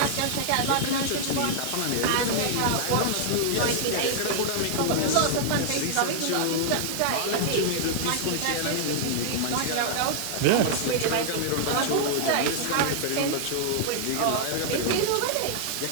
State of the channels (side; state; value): both; different; correlation -0.01